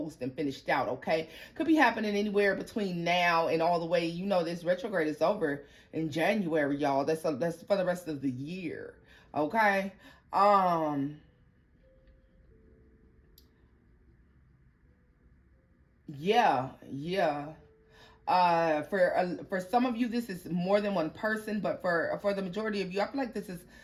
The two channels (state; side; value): identical; both; correlation 1.00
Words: and finished out, okay? Could be happening anywhere between now and all the way, you know, this retrograde is over in January, y'all. That's for the rest of the year, okay? Yeah, yeah. For some of you, this is more than one person, but for the majority of you, I feel like this is